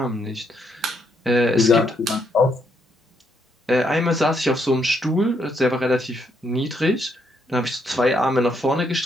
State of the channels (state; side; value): normal; both; correlation 0.75